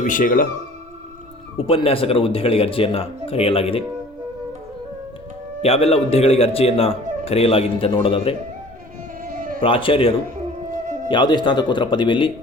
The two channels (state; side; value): normal; both; correlation 0.48